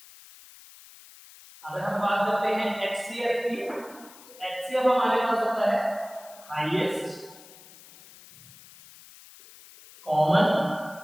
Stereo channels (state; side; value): noise; left; hiss, 21 dB below the sound